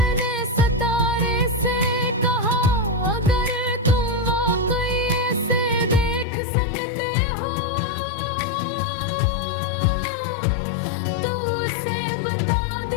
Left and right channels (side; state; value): right; drops out; at 6.2 s